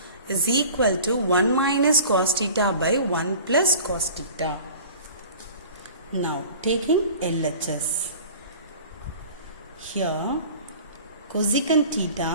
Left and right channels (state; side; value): inverted; both; correlation -0.43